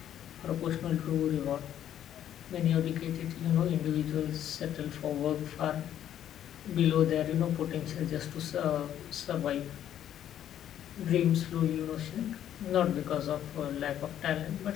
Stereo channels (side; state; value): right; quieter; 10.7 dB